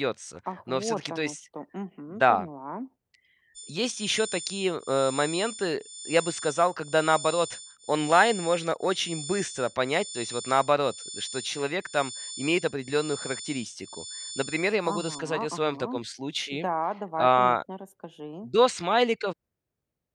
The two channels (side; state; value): both; identical; correlation 1.00